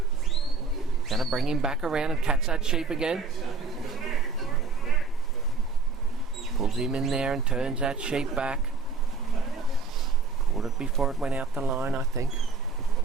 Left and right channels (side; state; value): left; quieter; 4.3 dB